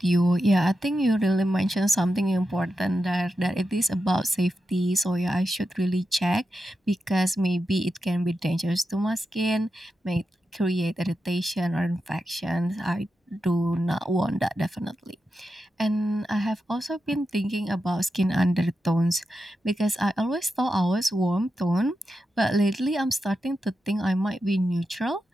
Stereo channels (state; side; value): normal; both; correlation 0.89